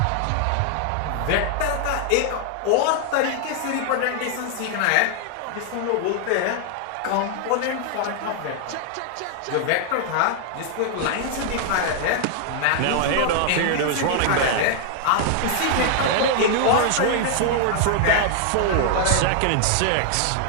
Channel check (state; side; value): different; both; correlation 0.00